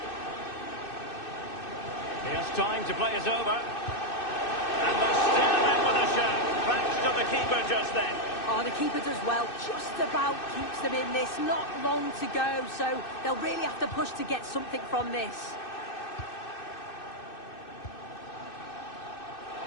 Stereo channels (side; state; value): right; late; 2.6 ms